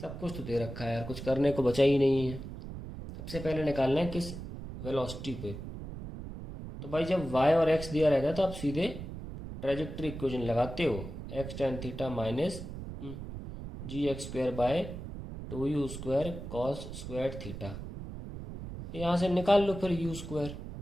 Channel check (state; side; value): noise; right; rumble, 9 dB below the sound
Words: कुछ तो दे रखा है यार, कुछ करने को बचा ही नहीं है. सबसे पहले निकालना है किस वेलोसिटी पे. तो भाई जब y और x दिया रहता है तो आप सीधे ट्रेजेक्ट्री इक्वेशन लगाते हो. x tan theta minus g x square by 2u square cos square theta. यहाँ से निकाल लो फिर u स्क्वायर.